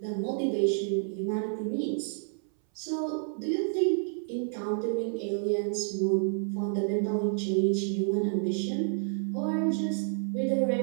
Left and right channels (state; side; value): silent; left; 58 dB below the other